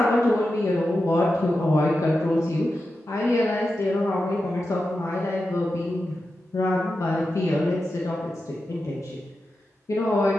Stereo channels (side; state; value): both; normal; correlation 0.90